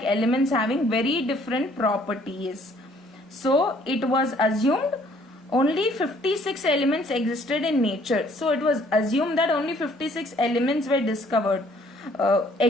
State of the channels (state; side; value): normal; both; correlation 0.61